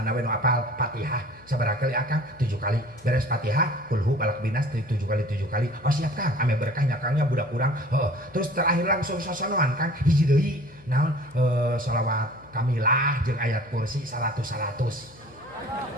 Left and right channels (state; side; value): noise; left; hum, 25 dB below the sound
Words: we nu apal Fatihah sabaraha kali akang 7 kali beres Fatihah kulhu balak binas 7 kali oh siap Kang ame berkah nyakangnya budak urang terus terakhir langsung sasanoan Kang hiji deui naon shalawat kamilah jeung ayat kursi 100